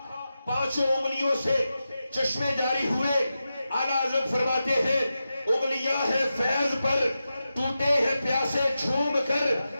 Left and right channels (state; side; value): inverted; both; correlation -0.91